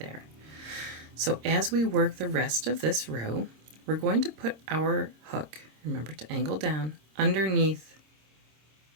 So as we work the rest of this row, we're going to put our hook, remember to angle down, underneath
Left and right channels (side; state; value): left; late; 26 ms